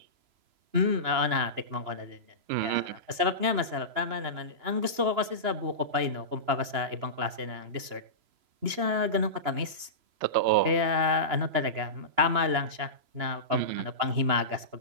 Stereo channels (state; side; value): late; left; 2.9 ms